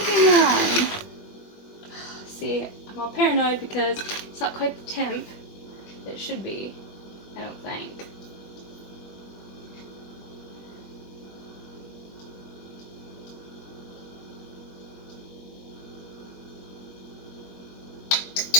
on. See, I'm all paranoid because it's not quite the temp that it should be, I don't think.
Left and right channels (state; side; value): late; right; 21 ms